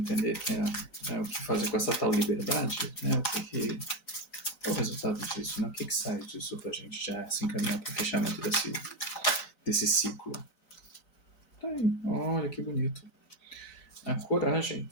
o que fazer com essa tal liberdade, né? Qual é o resultado disso, né? O que sai disso pra gente já se encaminhar para o fechamento desse ciclo? Tá aí, olha que bonito. A coragem.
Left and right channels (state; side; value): late; right; 3.9 ms